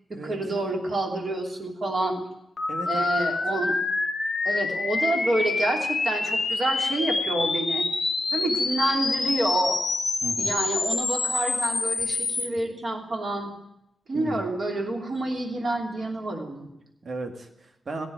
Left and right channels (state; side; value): normal; both; correlation 0.87